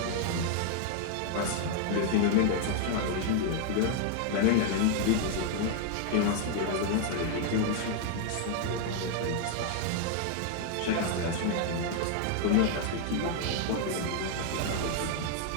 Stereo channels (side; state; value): both; different; correlation 0.00